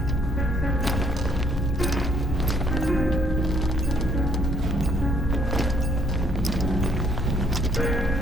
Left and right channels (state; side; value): normal; both; correlation 0.67